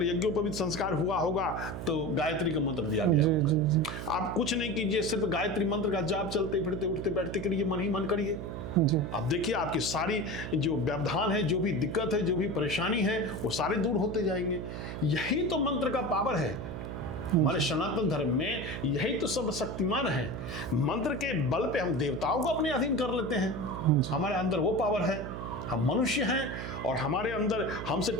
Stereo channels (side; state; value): right; noise; hum, 7 dB below the sound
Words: यज्ञोपवीत संस्कार हुआ होगा तो गायत्री का मंत्र दिया गया होगा। जी आप कुछ नहीं कीजिए, सिर्फ गायत्री मंत्र का जाप चलते फिरते उठते बैठते करिए, मन ही मन करिए। जी अब देखिए आपकी सारी जो व्यवधान है, जो भी दिक्कत है, जो भी परेशानी है, वो सारे दूर होते जाएंगे। यही तो मंत्र का पावर है। हमारे सनातन धर्म में यही तो सब शक्तिमान है। मंत्र के बल पे हम देवताओं को अपने अधीन कर लेते हैं। हमारे अंदर वो पावर है। हम मनुष्य हैं और हमारे अंदर हमसे